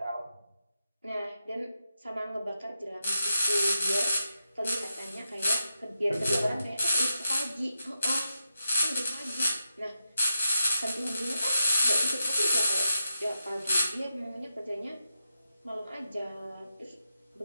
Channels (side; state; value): both; inverted; correlation -0.87